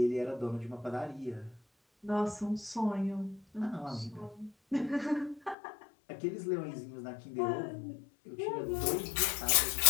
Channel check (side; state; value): right; drops out; at 5.6 s